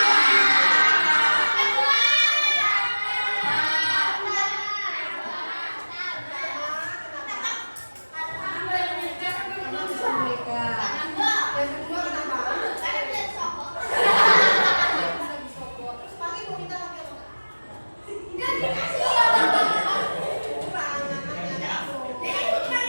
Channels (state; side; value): inverted; both; correlation -1.00